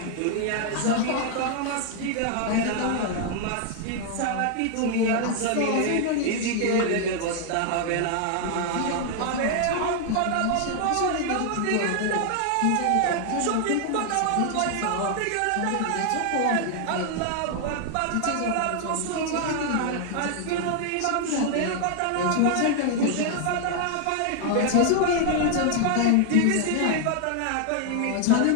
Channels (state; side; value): different; both; correlation 0.00